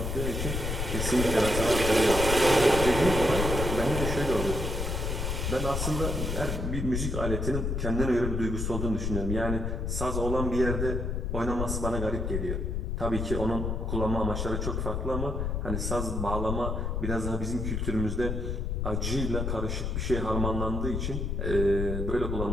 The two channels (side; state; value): left; noise; rumble, 1 dB below the sound